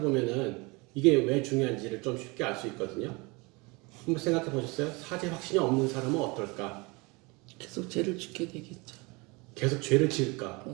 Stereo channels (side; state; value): left; quieter; 26.6 dB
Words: 이게 왜 중요한지를 좀 쉽게 알 수 있거든요. 한번 생각해 보셨어요? 사죄 확신이 없는 사람은 어떨까? 계속 죄를 짓게 되겠죠. 계속 죄를 지을까?